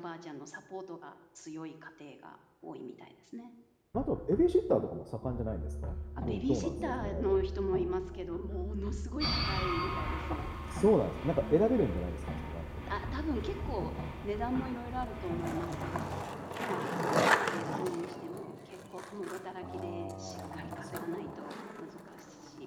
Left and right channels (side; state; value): both; identical; correlation 1.00